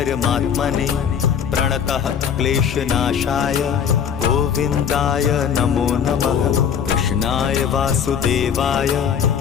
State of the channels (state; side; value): quieter; right; 7.8 dB